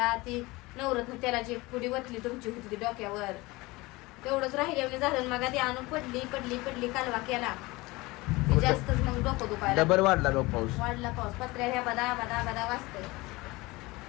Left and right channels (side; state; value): right; quieter; 22.0 dB